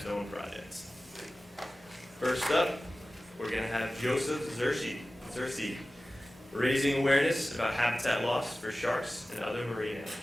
projects. First up, we're going to have Joseph Searcy, raising awareness about habitat loss for sharks and other marine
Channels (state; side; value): normal; both; correlation 0.96